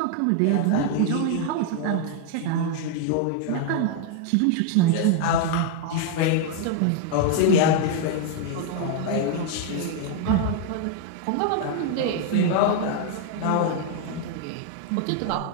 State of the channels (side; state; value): both; different; correlation 0.00